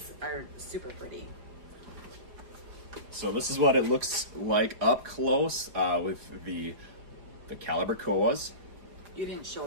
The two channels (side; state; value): left; late; 4.8 ms